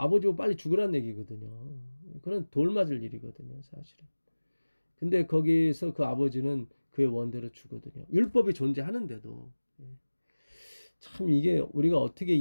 빨리 죽으란 얘기거든요. 그건 돌 맞을 일이거든요, 사실은. 근데 거기서 그 아버지는 그의 원대로 주거든요. 율법이 존재하는데도. 참 이게 우리가 어떻게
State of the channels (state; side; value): inverted; both; correlation -1.00